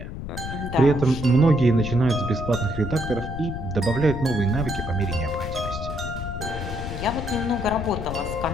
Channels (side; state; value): left; noise; rumble, 7 dB below the sound